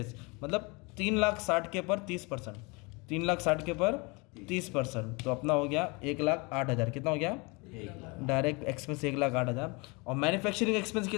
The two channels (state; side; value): quieter; right; 28.4 dB